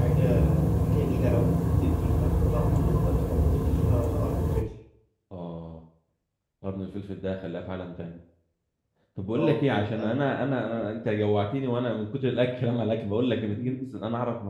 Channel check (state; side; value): identical; both; correlation 1.00